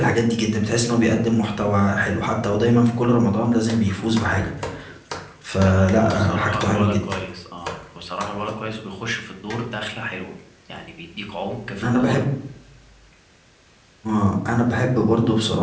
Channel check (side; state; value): both; identical; correlation 1.00